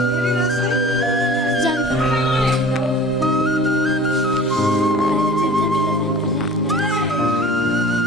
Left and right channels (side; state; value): both; normal; correlation 0.43